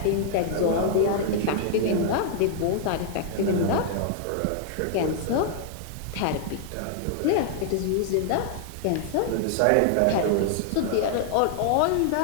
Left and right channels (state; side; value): different; both; correlation 0.00